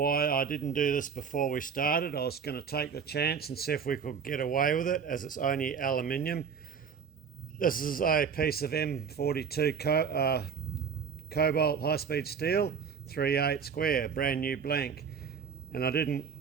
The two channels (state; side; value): quieter; left; 6.5 dB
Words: I didn't do this before we started, I was going to take the chance and see if we could get away with it, as it's only aluminium. This is a piece of M42 cobalt high-speed steel, 3/8 square, brand new blank. And I didn't,